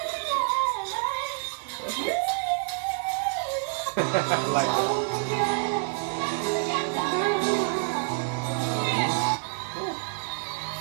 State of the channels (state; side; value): silent; left; 55 dB below the other